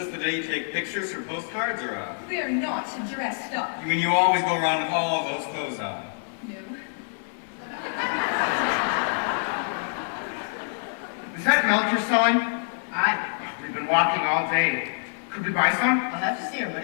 the day you take pictures for postcards, or We are not dressed up. You mean you always go around with all those clothes on? No. Is that milk you're selling? Aye. We've been walking all day. Could we buy some? I'll have to see her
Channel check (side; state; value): right; silent; 61 dB below the other